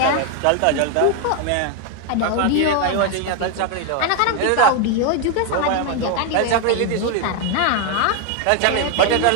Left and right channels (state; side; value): different; both; correlation 0.01